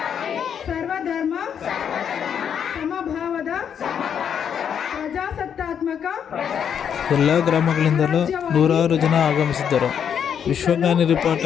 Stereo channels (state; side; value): quieter; right; 8.1 dB